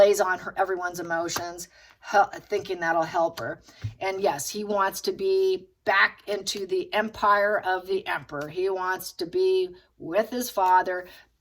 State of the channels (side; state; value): both; identical; correlation 1.00